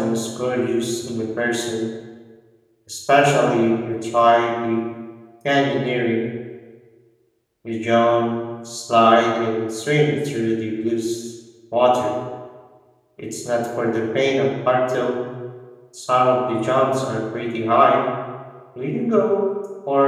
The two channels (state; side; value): identical; both; correlation 1.00